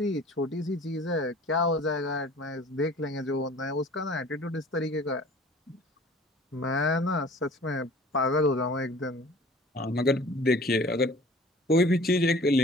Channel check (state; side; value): normal; both; correlation 0.48